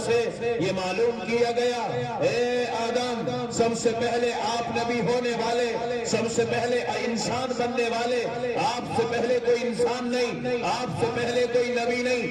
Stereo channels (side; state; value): both; identical; correlation 1.00